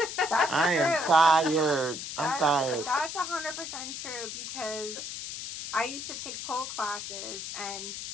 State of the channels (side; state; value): left; noise; hiss, 7 dB below the sound